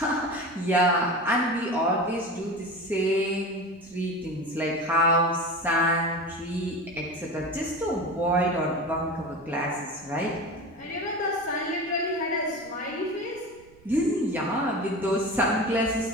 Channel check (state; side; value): noise; right; rumble, 27 dB below the sound